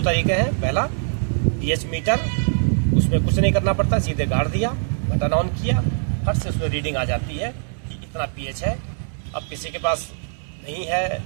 तरीके हैं, पहला पीएच मीटर, उसमें कुछ नहीं करना पड़ता, सीधे गाड़ दिया, बटन ऑन किया, फट से उसमें रीडिंग आ जाती है कि इतना पीएच है। अब किसी के पास नहीं है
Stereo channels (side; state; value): left; silent; digital silence